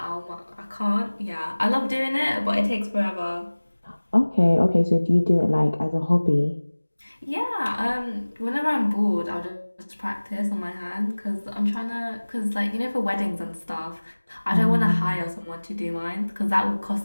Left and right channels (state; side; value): inverted; both; correlation -1.00